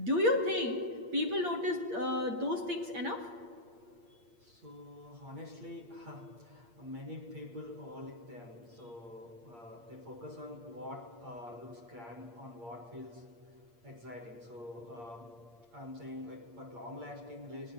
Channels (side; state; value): left; late; 8.6 ms